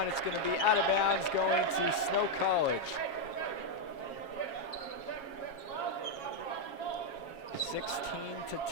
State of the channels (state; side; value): late; right; 7.3 ms